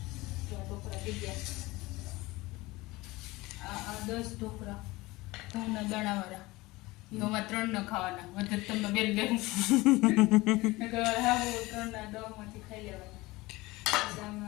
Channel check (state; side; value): quieter; right; 20.9 dB